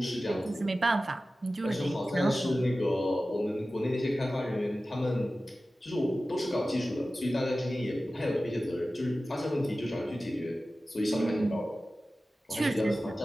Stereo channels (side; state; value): both; normal; correlation 0.95